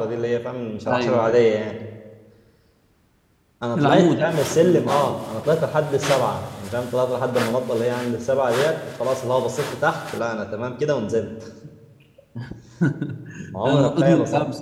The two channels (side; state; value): both; identical; correlation 1.00